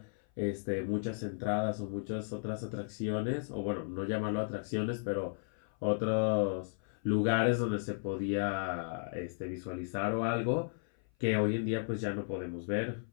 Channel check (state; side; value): silent; right; 55 dB below the other